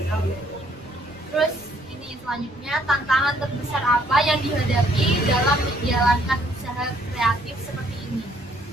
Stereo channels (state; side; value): normal; both; correlation 0.65